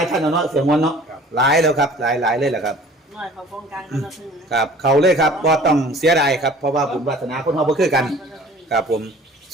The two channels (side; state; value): both; normal; correlation 0.48